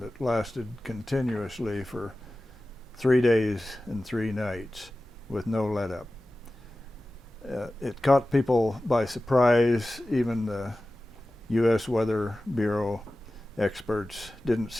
that lasted continuously for 3 days and 3 nights with no let up. It caught people by surprise. Even the U.S. Weather Bureau experts didn't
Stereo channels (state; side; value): normal; both; correlation 0.95